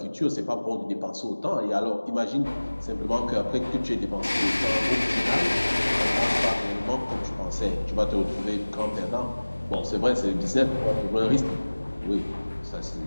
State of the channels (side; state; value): both; inverted; correlation -1.00